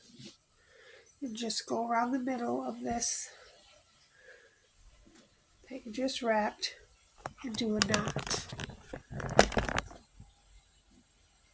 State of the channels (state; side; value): identical; both; correlation 1.00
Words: and just go around the middle of this that you just wrapped and do a knot.